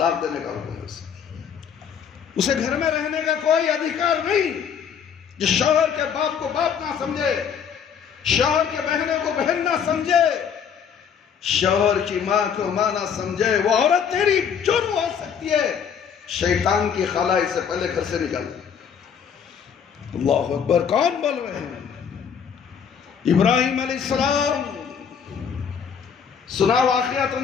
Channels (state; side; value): quieter; right; 7.4 dB